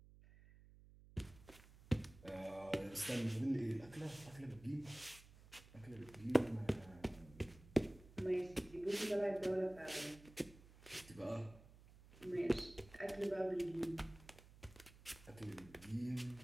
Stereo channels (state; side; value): noise; right; hum, 21 dB below the sound